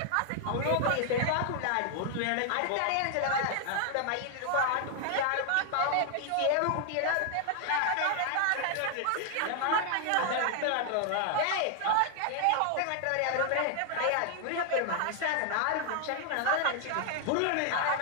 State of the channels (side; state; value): both; different; correlation 0.00